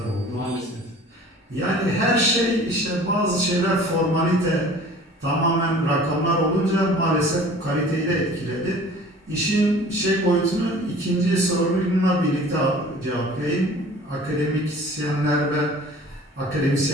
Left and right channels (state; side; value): normal; both; correlation 0.46